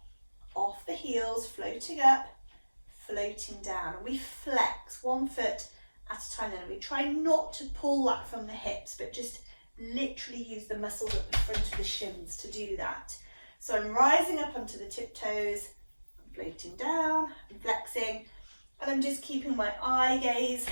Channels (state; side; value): inverted; both; correlation -1.00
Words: off the heels, floating up, floating down. And we flex one foot at a time then. We try not to pull that from the hips, but just literally use the muscles at the front of the shins to do that. So I'm rising up onto the tiptoes, floating down, and flexing, and I'm just keeping my eye gaze